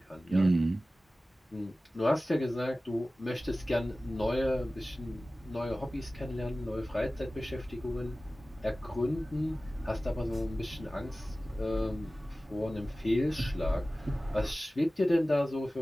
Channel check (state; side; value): normal; both; correlation 0.96